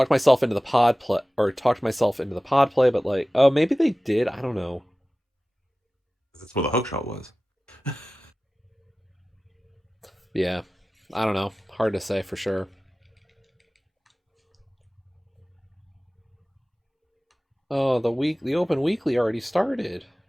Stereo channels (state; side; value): normal; both; correlation 0.97